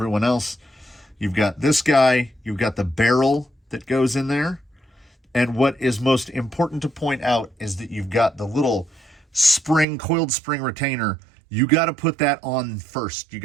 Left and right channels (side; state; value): left; drops out; at 9.9 s